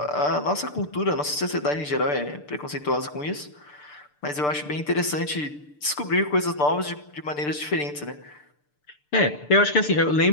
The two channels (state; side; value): late; right; 6.8 ms